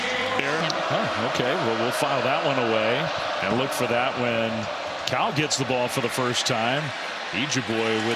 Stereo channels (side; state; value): both; identical; correlation 1.00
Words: Okay, well, we'll file that one away and look for that when Cal gets the ball for the first time. Ejeboy